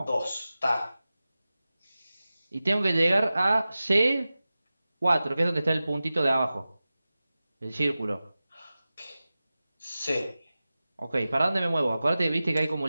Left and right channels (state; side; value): inverted; both; correlation -0.96